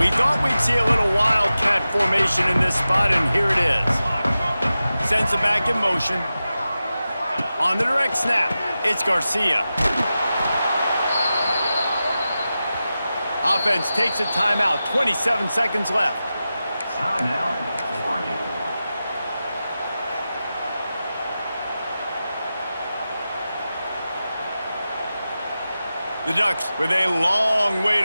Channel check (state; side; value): inverted; both; correlation -0.93